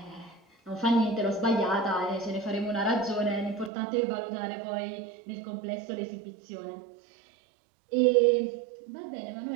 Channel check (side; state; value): left; drops out; at 3.7 s